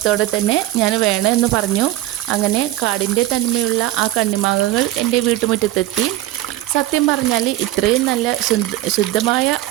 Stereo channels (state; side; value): quieter; left; 15.5 dB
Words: തന്നെ ഞാൻ വേണമെന്ന് പറഞ്ഞു. അങ്ങനെ കാടിൻ്റെ തനിമയുള്ള ആ കണ്ണിമാങ്ങകൾ എൻ്റെ വീട്ടുമുറ്റത്തെത്തി. സത്യം പറഞ്ഞാൽ ഇത്രയും നല്ല ശുദ്ധമായ